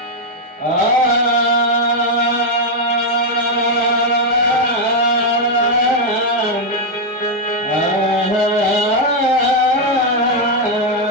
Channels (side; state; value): both; normal; correlation 0.01